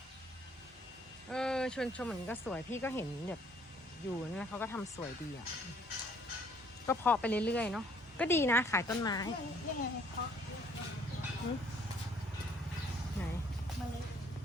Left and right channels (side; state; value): both; normal; correlation 0.61